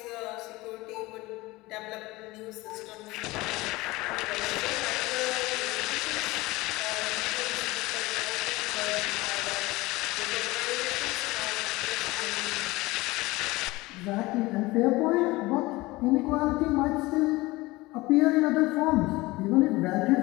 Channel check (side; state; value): right; quieter; 20.8 dB